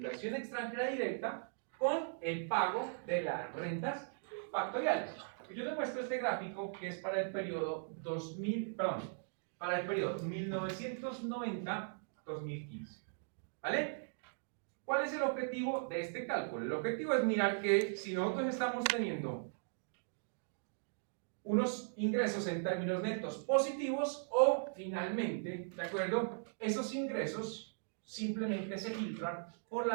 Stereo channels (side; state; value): left; silent; digital silence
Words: extranjera directa con el pago de las rentas factoriales. Yo les muestro este gráfico que es para el periodo 1990-2015. ¿Vale? ¿Cuál es el objetivo de este cálculo? El objetivo es mirar que si nosotros estamos teniendo unos ingresos en términos netos positivos o finalmente, ¿de acuerdo? Esos ingresos simplemente se filtran por